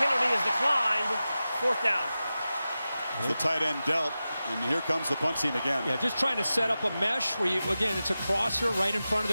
penalty is declined. 4th down. The tight end dealt, and here comes the punt team again. Yeah, just trying to set up a mesh where again, it's a crosser right in front of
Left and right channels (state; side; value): inverted; both; correlation -0.94